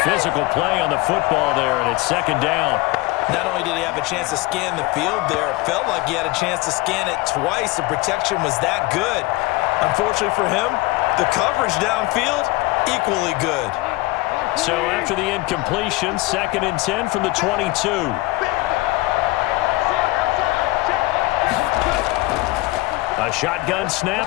Physical play on the football there, and it's second down. Not only did he have a chance to scan the field there, it felt like he had a chance to scan it twice. The protection was that good. Unfortunately for him, the coverage downfield, equally good. So after the incompletion, 2nd and 10 from the 22. A shotgun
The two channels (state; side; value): quieter; right; 20.6 dB